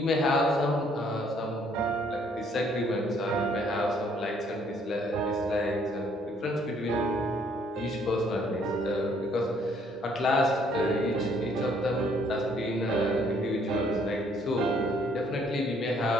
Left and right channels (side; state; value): both; normal; correlation 0.64